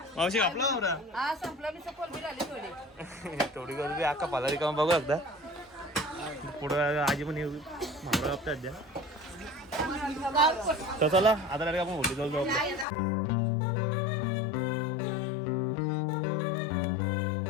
मावशी कापला मावरा थोडी गर्दी अख्खा पालारी काम बघू एकदा पुढं आजी पण येऊ मावरा कापतात द्या तर चला आता आपण होली जाऊ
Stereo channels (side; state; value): right; drops out; at 12.9 s